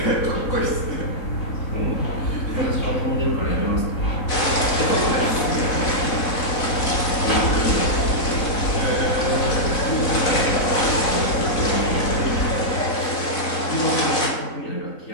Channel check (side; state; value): right; late; 4.1 ms